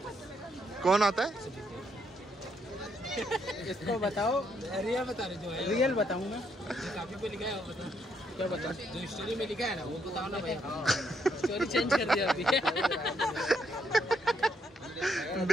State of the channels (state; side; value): normal; both; correlation 0.75